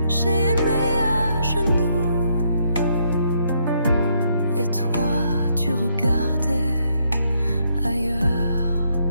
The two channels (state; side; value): inverted; both; correlation -0.73